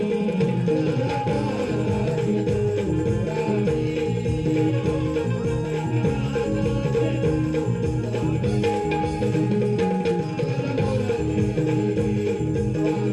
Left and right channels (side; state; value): both; identical; correlation 1.00